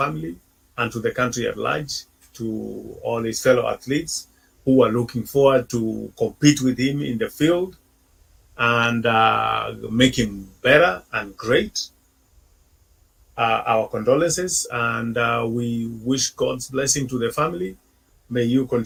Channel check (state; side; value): identical; both; correlation 1.00